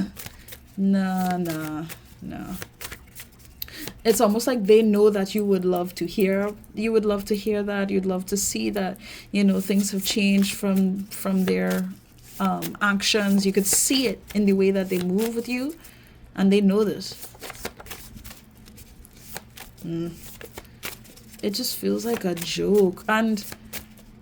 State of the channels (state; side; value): identical; both; correlation 1.00